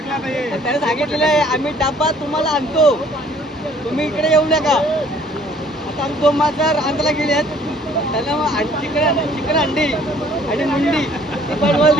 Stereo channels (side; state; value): both; normal; correlation 0.58